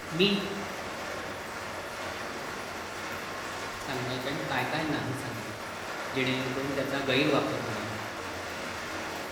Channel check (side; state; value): both; identical; correlation 1.00